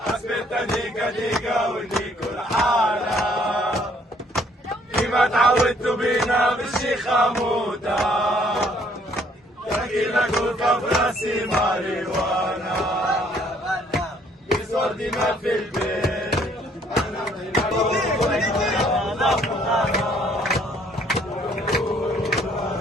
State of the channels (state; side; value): normal; both; correlation 0.63